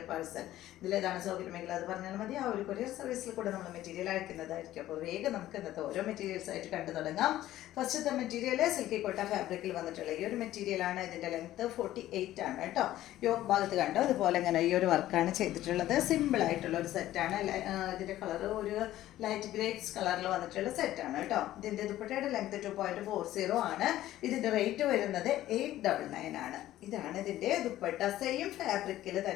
parcel. ഇതിലേതാണ് സൗകര്യമെങ്കിൽ അത് പറഞ്ഞാൽ മതി. ആ ഒരു കൊറിയർ സർവീസിൽ കൂടെ നമ്മൾ മെറ്റീരിയൽ അയക്കുന്നതായിരിക്കും. അപ്പോൾ വേഗം നമുക്ക് ഇന്നത്തെ ഓരോ മെറ്റീരിയൽസ് ആയിട്ട് കണ്ടു തുടങ്ങാം. ഫസ്റ്റത്തെ മെറ്റീരിയൽ സിൽക്കി കോട്ട ഫാബ്രിക്കിൽ വന്നിട്ടുള്ള ഈ ഒരു മെറ്റീരിയലാണ്. ഇതിന്റെ ലെങ്ത് 48 ആണ് കേട്ടോ. യോക്ക് ഭാഗത്ത് കണ്ടോ അതുപോലെ ഇങ്ങനെ ഈ ഒരു വർക്കാണ് ചെയ്തിട്ടുള്ളത്. സിമ്പിൾ ആയിട്ടുള്ള ഒരു സെറ്റാണ്. ഇതിന്റെ കളർ ഒരു ലൈറ്റ് ഗ്രേപ്സ് കളറിൽ വന്നിട്ടുള്ള സെറ്റാണ് കേട്ടോ. ഇതിന്റെ ദുപ്പട്ടയുടെ ലെങ്ത് 2.40 ആണ്. ഇതിന്റെ റേറ്റ് വരുന്നത് 899 ആണ്. ഇതാണ് ഇതിന്റെ ദുപ്പട്ട. സെയിം ഫാബ്രിക്കിൽ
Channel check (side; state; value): right; quieter; 14.1 dB